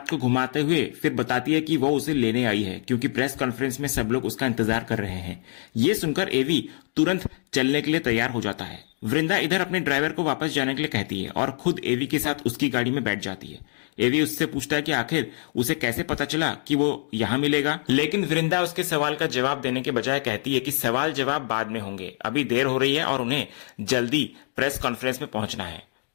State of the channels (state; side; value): silent; right; 62 dB below the other